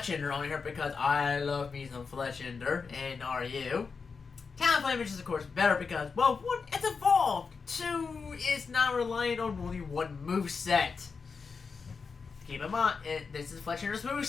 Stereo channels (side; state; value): right; quieter; 5.1 dB